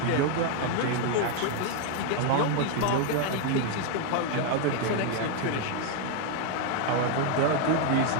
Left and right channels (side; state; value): both; different; correlation 0.01